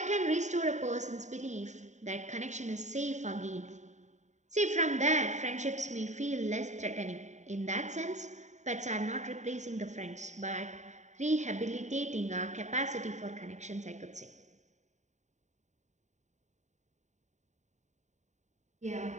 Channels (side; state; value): left; late; 0.34 ms